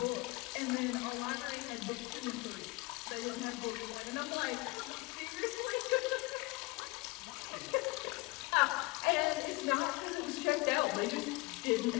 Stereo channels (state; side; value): quieter; right; 24.0 dB